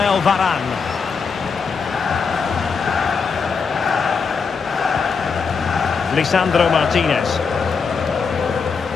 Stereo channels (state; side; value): quieter; right; 5.5 dB